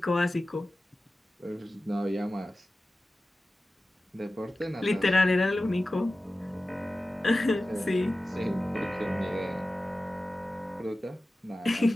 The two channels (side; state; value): both; normal; correlation 0.95